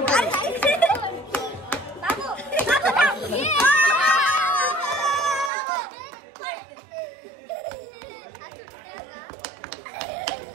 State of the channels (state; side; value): drops out; left; at 5.5 s